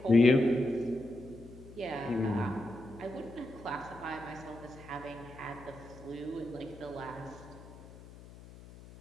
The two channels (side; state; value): left; noise; hum, 18 dB below the sound